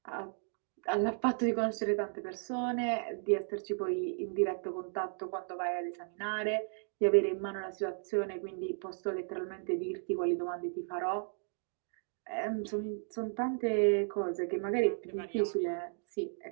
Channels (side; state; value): left; silent; 55 dB below the other